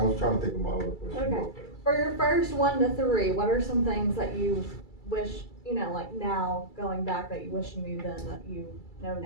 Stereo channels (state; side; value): late; right; 2.3 ms